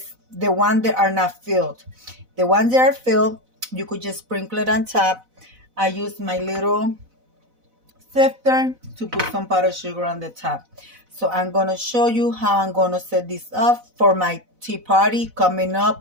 the ones that are not filled. The ones that are filled, you could just sprinkle it on top. I use my little sifter to put some powdered sugar on the top. So I'm going to show you how I'm going to set this up for my tea party coming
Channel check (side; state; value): left; late; 4.0 ms